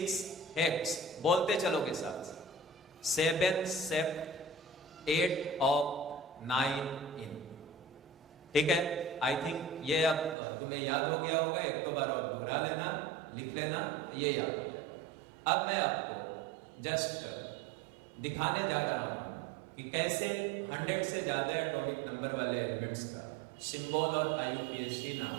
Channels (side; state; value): left; drops out; at 10.4 s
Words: hex, बोलते चलोगे साथ, 7 सेप्ट, 8 ऑफ, 9 इन। ठीक है, आई थिंक ये अब तुम्हें याद हो गया होगा। 1-2 बार और दोहरा लेना, लिख लेना, ये याद हो जाएगा। अब मैं आपको जस्ट दिखाने जा रहा हूं कि कैसे 100 से ज्यादा एटॉमिक नंबर वाले एलिमेंट्स का सिंबल और IUPAC नाम